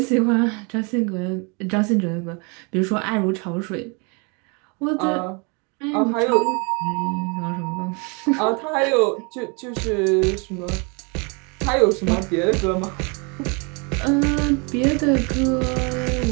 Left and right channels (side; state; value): left; quieter; 32.4 dB